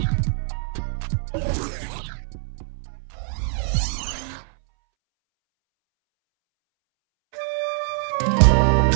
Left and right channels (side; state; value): left; silent; 63 dB below the other